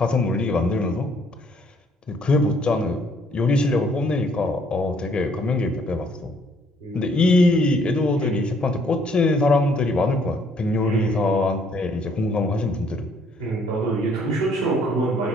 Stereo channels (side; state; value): both; normal; correlation 0.65